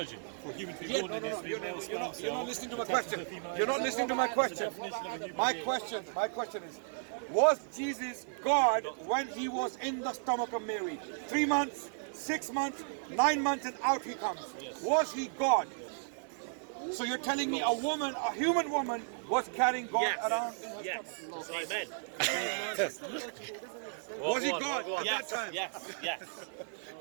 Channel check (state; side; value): silent; left; digital silence